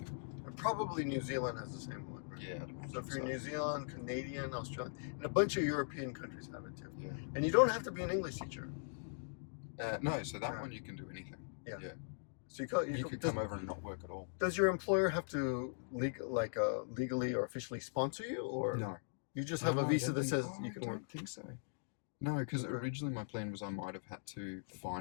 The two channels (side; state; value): right; silent; digital silence